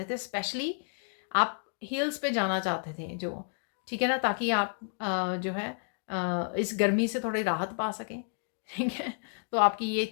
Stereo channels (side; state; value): right; silent; 57 dB below the other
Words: थे, स्पेशली आप हिल्स पे जाना चाहते थे, जो ठीक है ना, ताकि आप जो है इस गर्मी से थोड़ी राहत पा सकें, ठीक है। तो आपकी ये